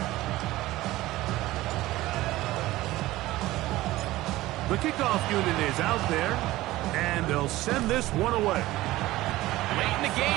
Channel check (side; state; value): left; quieter; 17.3 dB